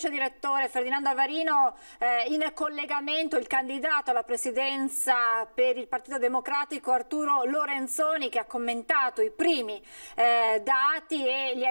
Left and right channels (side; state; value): both; inverted; correlation -1.00